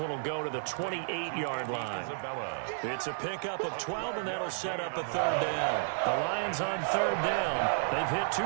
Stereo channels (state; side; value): silent; left; digital silence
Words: will go to the 28-yard line. It's a pickup of 12, and that'll set up a third down. The Lions on third down. They've hit